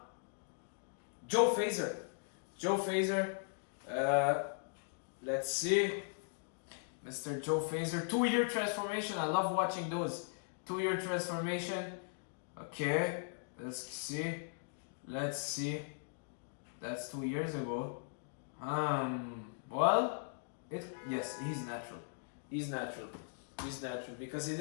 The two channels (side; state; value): right; silent; digital silence